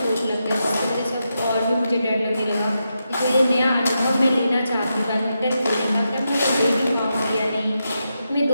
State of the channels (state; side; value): inverted; both; correlation -0.86